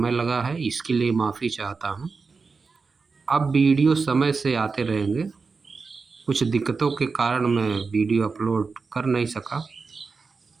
लगा है, इसके लिए माफ़ी चाहता हूँ। अब वीडियो समय से आते रहेंगे। कुछ दिक्कतों के कारण मैं वीडियो अपलोड कर नहीं सका,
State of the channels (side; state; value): left; quieter; 4.6 dB